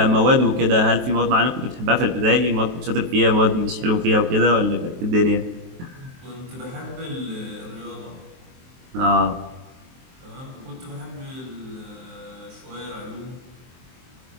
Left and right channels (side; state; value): left; late; 23 ms